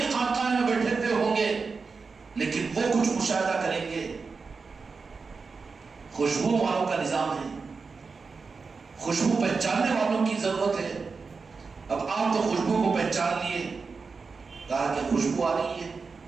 خانقاہ میں بیٹھے ہوئے ہوں گے لیکن وہ کچھ مشاہدہ کریں گے۔ خوشبو والوں کا نظام ہے، خوشبو پہچاننے والوں کی ضرورت ہے۔ اب آپ تو خوشبو کو پہچان لیے، کہا کہ خوشبو آ رہی ہے،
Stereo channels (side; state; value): left; quieter; 4.7 dB